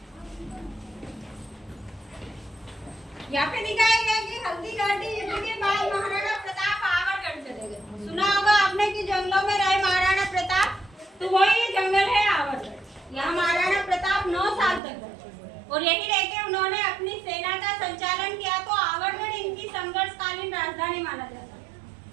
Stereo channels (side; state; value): left; drops out; at 14.8 s